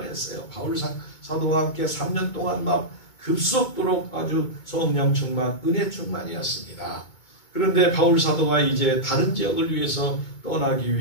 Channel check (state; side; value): late; right; 2.2 ms